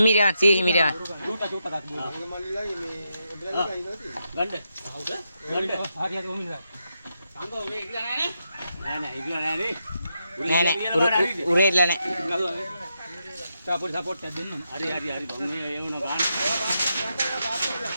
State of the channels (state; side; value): inverted; both; correlation -0.84